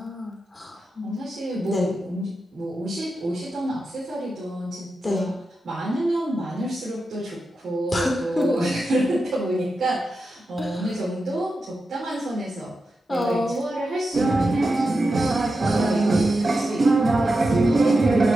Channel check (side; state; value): both; normal; correlation 0.90